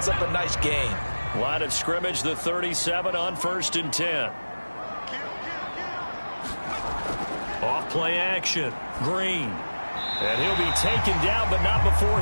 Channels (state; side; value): inverted; both; correlation -1.00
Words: up a nice gain. Line of scrimmage, the 37 on 1st and 10. Off play action. Green. And he'll be taken down, but not before